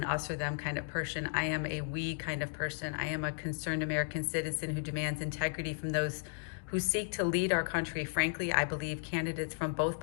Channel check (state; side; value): silent; right; digital silence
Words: us or them kind of person. I am a we kind of person. I am a concerned American citizen who demands integrity from those who seek to lead our country. Frankly, I believe candidates from both